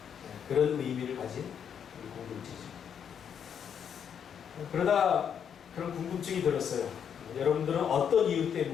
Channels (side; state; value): right; quieter; 8.0 dB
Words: 그런 의미를 가진 우리 공동체죠. 그러다 그런 궁금증이 들었어요. 여러분들은 어떤 이유